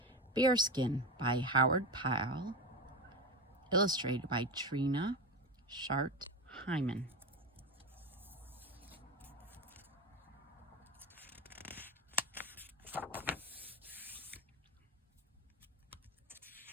Bearskin by Pyle, illustrated by Trina, Hyman.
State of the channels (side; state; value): both; normal; correlation 0.20